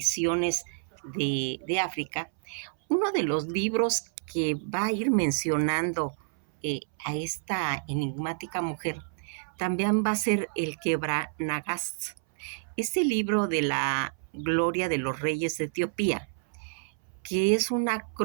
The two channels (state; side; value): silent; left; 59 dB below the other